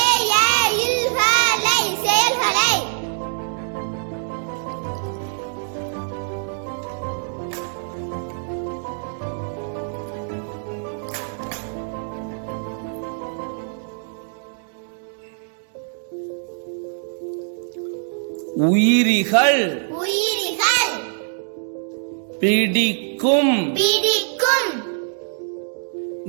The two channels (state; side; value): silent; left; digital silence